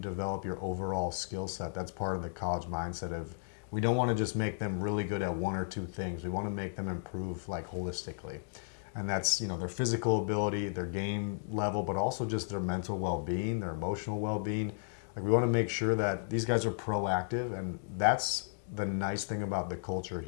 your overall skill set, that's part of the college mindset of, we don't want to just make them really good at one or two things. We want to make them improve holistically. And that's, their physical ability, their game level, but also just their mental well-being, their emotional well-being. We want to make sure that these guys are proactive, and that's the nice thing about the culture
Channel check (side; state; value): right; silent; digital silence